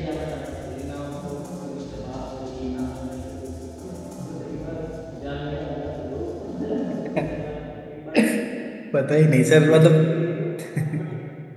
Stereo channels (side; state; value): both; identical; correlation 1.00